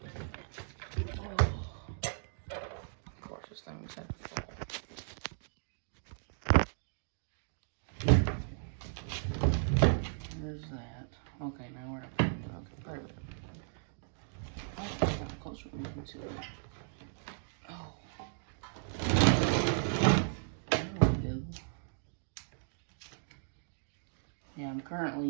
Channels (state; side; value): silent; left; digital silence